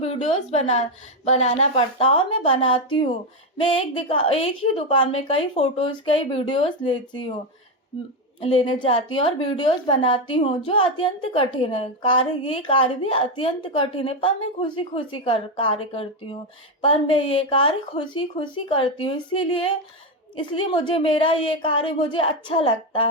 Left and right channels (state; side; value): normal; both; correlation 0.08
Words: बनाना पड़ता है और मैं बनाती हूँ। मैं एक ही दुकान में कई फ़ोटोज़, कई वीडियोज़ लेने जाती हूँ और वीडियोज़ बनाती हूँ, जो अत्यंत कठिन है। ये कार्य भी अत्यंत कठिन है, पर मैं खुशी-खुशी कार्य करती हूँ। पर मैं ये कार्य खुशी-खुशी करती हूँ, इसलिए मुझे मेरा ये कार्य मुझे अच्छा लगता